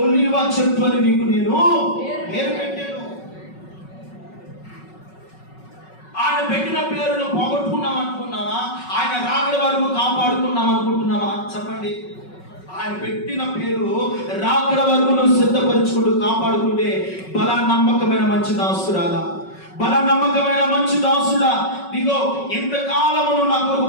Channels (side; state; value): right; late; 5.4 ms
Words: ఒలీవ చెట్టు అని నీకు నేను పేరు పెట్టాను. ఆయన పెట్టిన పేరును పోగొట్టుకున్నాం అనుకున్నావా? ఆయన రాకడ వరకు కాపాడుకున్నాం అనుకుంటున్నావా? చెప్పండి. ఆయన పెట్టిన పేరు రాకడ వరకు నువ్వు సిద్ధపరచుకుంటూ కాపాడుకుంటే బలా నమ్మకమైన మంచి దాసురాలా, బల నమ్మకమైన మంచి దాసుడా, నీకో ఇంతకాలము నువ్వు నా కొరకు